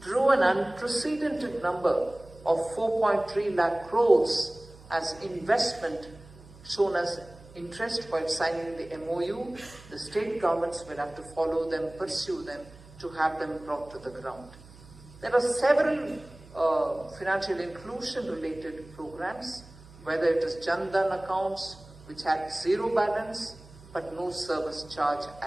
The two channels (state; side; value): noise; right; hum, 21 dB below the sound